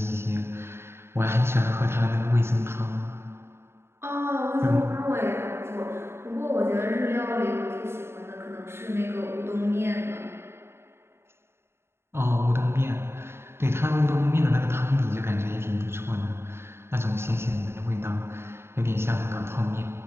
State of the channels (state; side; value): late; left; 0.12 ms